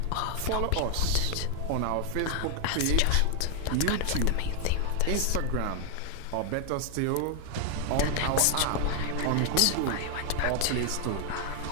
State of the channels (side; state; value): both; different; correlation 0.00